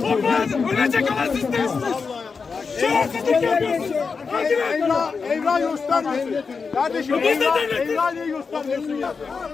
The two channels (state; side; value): quieter; right; 5.1 dB